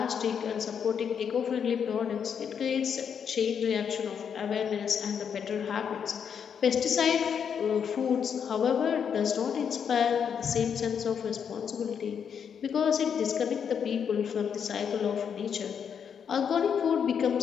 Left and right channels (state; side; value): quieter; right; 7.4 dB